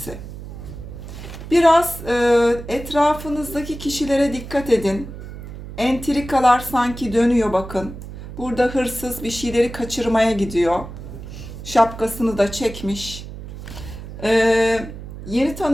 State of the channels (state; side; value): noise; right; hum, 12 dB below the sound